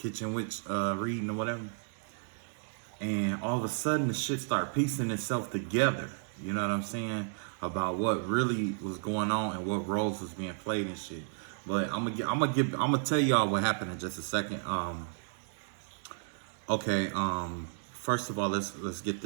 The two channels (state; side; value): silent; left; digital silence